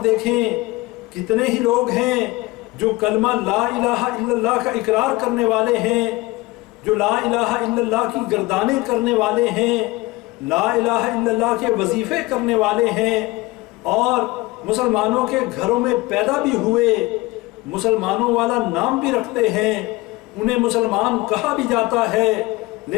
دیکھیں، کتنے ہی لوگ ہیں جو کلمہ لا الہ الا اللہ کا اقرار کرنے والے ہیں، جو لا الہ الا اللہ کی گردانیں کرنے والے ہیں، لا الہ الا اللہ کے وظیفے کرنے والے ہیں، اور مسلمانوں کے گھروں میں پیدا بھی ہوئے، مسلمانوں والا نام بھی رکھتے ہیں، انہیں مسلمان کہا بھی جاتا ہے،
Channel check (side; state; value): right; quieter; 21.1 dB